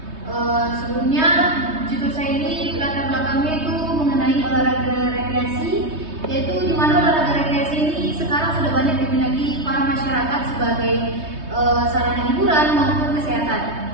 Sebelumnya judul saya ini latar belakangnya itu mengenai olahraga rekreasi, yaitu di mana olahraga rekreasi ini sekarang sudah banyak diminati para masyarakat sebagai sarana hiburan maupun kesehatan.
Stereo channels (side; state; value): left; late; 3.2 ms